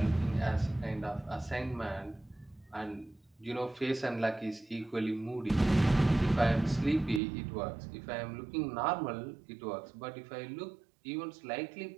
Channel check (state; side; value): drops out; left; at 7.2 s